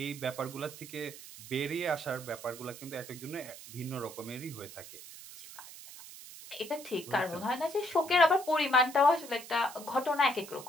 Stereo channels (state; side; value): noise; right; hiss, 15 dB below the sound